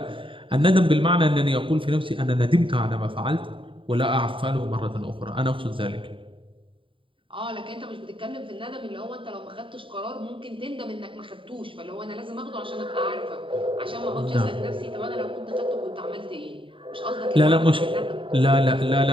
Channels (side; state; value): left; late; 0.25 ms